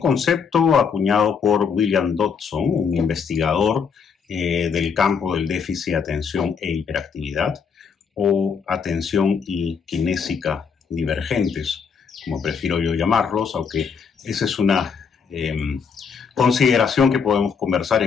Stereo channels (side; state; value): right; quieter; 6.2 dB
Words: acuñado por William Dodson, un investigador del campo del déficit de atención e hiperactividad, o atención y kinésica divergentes, como prefiero yo llamarlos, aunque esa es una consideración que podemos conversar